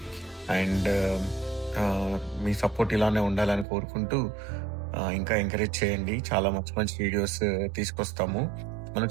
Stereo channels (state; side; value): drops out; left; at 3.7 s